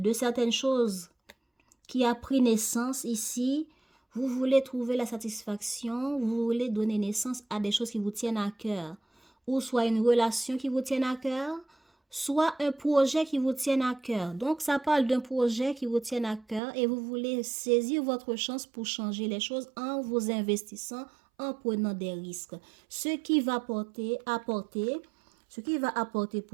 certaines choses qui a pris naissance ici, vous voulez trouver la satisfaction, vous voulez donner naissance à des choses qui vous tiennent à cœur. Ou soit une relation qui vous tienne à cœur, soit un projet qui vous tienne à cœur. Donc, ça parle d'un projet qui vous tienne à cœur et vous voulez saisir votre chance pour changer les choses en vous investissant, en prenant des risques. Ce qui va apporter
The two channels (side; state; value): left; drops out; at 16.6 s